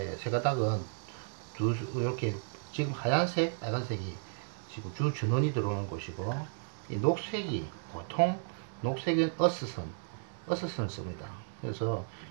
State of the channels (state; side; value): silent; left; digital silence